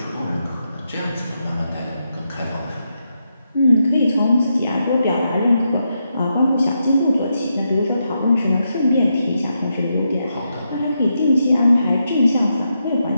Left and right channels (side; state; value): both; inverted; correlation -0.84